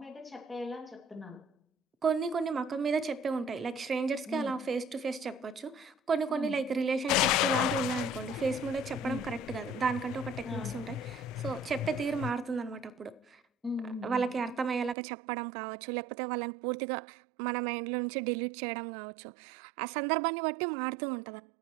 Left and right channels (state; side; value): drops out; left; at 15.0 s